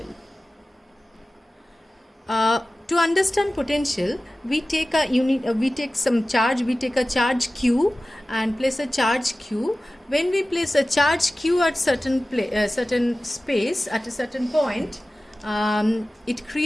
To understand potential, we take some charge. We take a charge Q and place a charge Q. When we place a charge Q at certain space at a certain point, it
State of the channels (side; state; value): both; normal; correlation 0.96